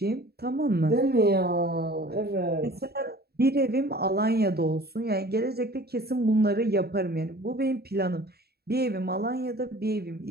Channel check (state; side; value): late; left; 0.46 ms